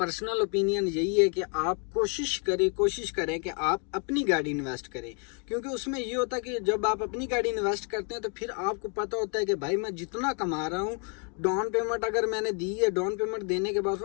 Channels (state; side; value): quieter; right; 38.6 dB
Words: ओपिनियन यही है कि आप कोशिश करें कि आप अपनी गाड़ी इन्वेस्ट करें। क्योंकि उसमें ये होता है कि जब आप अपनी गाड़ी इन्वेस्ट करते हैं तो फिर आपको पता होता है कि भाई मैं जितना कमा रहा हूँ, डाउन पेमेंट अगर मैंने दी है, डाउन पेमेंट देने के बाद